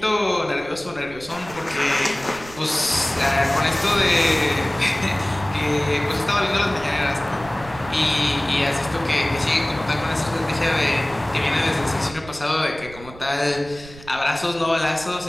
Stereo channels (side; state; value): right; noise; rumble, 18 dB below the sound